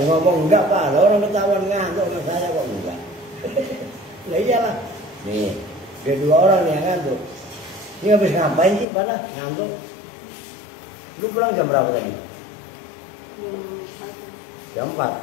ngomong enggak Pak, orang ketahuan ngantuk sama saya kok enggak. Lah iyalah. Nih, ada 2 orang yang ngantuk. Ini habis ngapain sih pada ngantuk? Lu pulang jam berapa tadi? Jam 4.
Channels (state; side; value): drops out; right; at 8.8 s